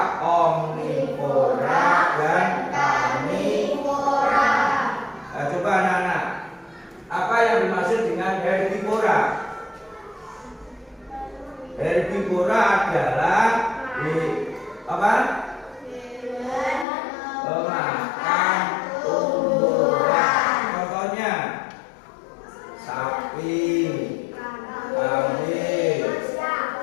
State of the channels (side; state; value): right; drops out; at 16.9 s